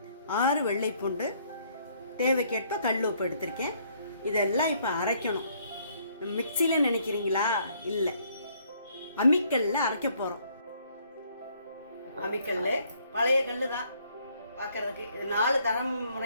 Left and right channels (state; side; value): inverted; both; correlation -0.66